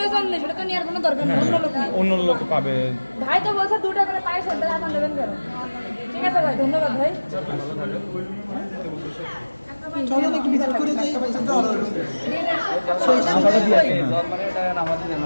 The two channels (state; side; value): inverted; both; correlation -1.00